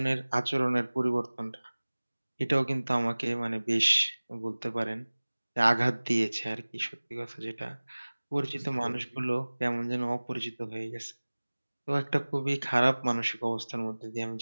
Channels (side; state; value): both; inverted; correlation -1.00